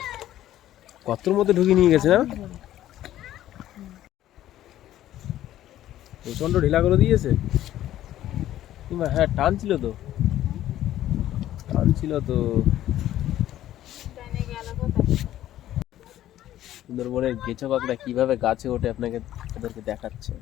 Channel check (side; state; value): right; quieter; 13.0 dB